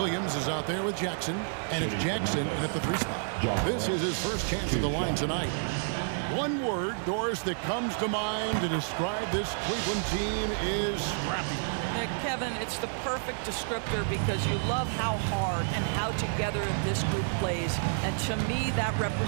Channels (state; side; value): silent; left; digital silence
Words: is out there with Jackson, and it's Jackson in at the 3 spot. This is his first chance at the line tonight. One word, Doris, that comes to mind to describe this Cleveland team is scrappy. Kevin, it's the perfect descriptor because you love how hard and how together this group plays, and to me that